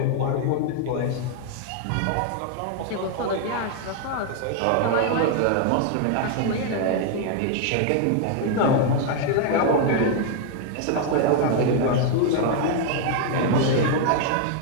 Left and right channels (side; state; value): both; different; correlation 0.00